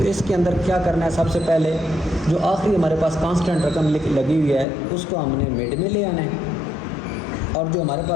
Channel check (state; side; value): drops out; right; at 4.7 s